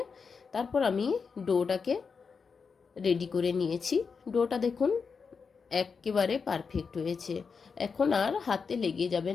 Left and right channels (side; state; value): right; quieter; 5.5 dB